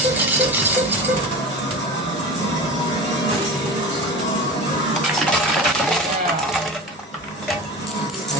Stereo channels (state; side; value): normal; both; correlation 0.31